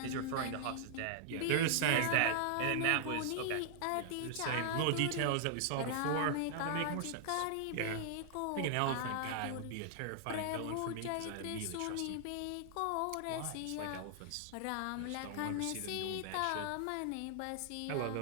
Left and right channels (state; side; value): different; both; correlation -0.01